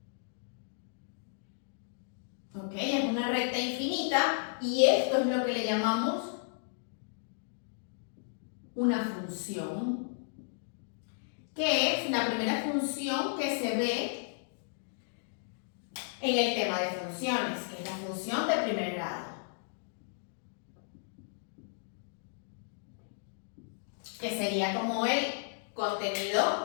es una recta infinita y esto es lo que le llamamos una función, que es la primera función que se ve en el tema de funciones, que es la función de primer grado, que sería como el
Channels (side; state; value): right; silent; digital silence